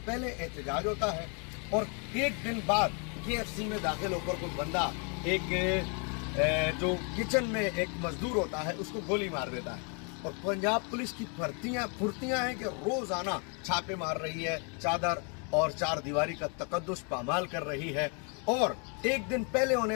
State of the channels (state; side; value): quieter; right; 37.1 dB